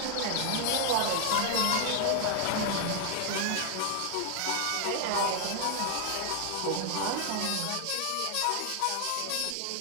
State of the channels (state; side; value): different; both; correlation 0.00